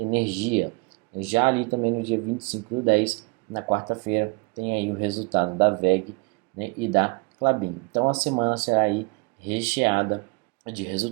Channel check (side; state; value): left; quieter; 29.6 dB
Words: Já ali também no dia 25/10, na quarta-feira, tem aí o resultado da VEG, né, e da Klabin. Então a semana será aí recheada de